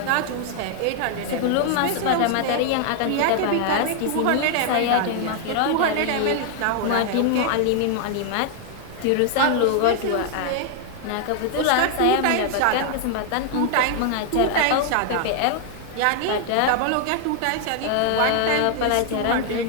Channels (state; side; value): different; both; correlation 0.00